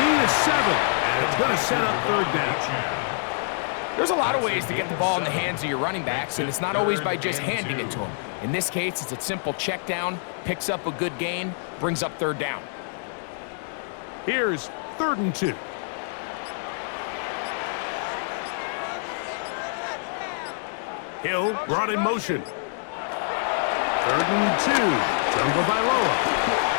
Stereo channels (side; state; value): right; silent; digital silence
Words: of 7. And it's going to set up third down. There's a lot of ways to get the ball in the hands of your running backs, and it's not always by just handing it to them. In this case, it's a simple check down, picks up a good gain, brings up third down. Here's 3rd and 2. Hill brought in motion. 3rd and 2. Tagovailoa.